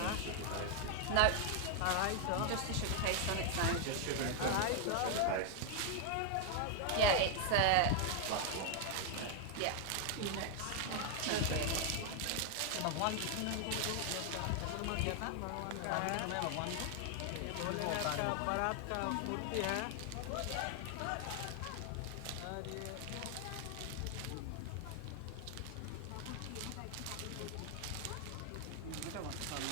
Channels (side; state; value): both; different; correlation 0.00